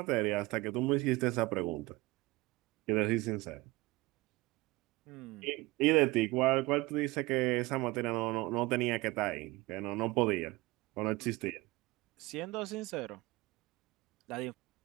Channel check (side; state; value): left; quieter; 20.8 dB